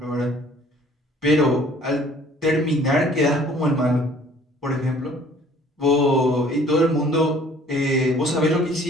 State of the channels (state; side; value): normal; both; correlation 0.54